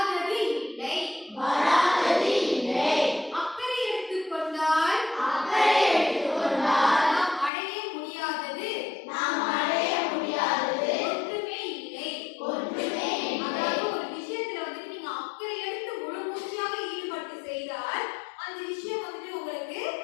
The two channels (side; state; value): right; drops out; at 7.5 s